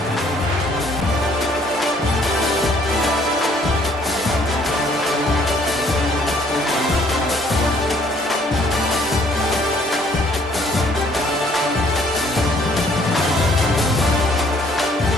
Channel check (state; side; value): normal; both; correlation 0.62